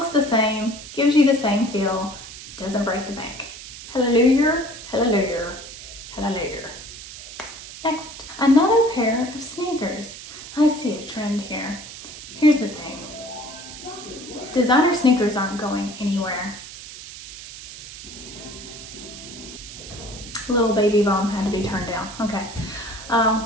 the same, gives you the same feel, doesn't break the bank. Hallelujah, hallelujah, hallelujah. Next, another pair of sneakers. I see a trend here. Here's the thing. Designer sneakers aren't going anywhere. Little baby bomb had to be turned down. Okay.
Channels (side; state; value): right; noise; hiss, 13 dB below the sound